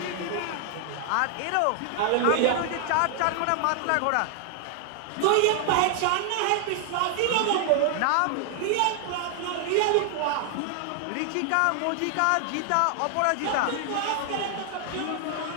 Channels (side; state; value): both; different; correlation 0.00